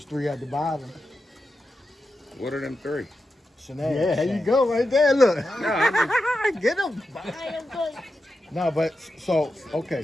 3 at the bottom, What are them 3? Sonad. Yeah, there you go, right there. Look, Get them. No, but so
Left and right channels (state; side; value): normal; both; correlation 0.89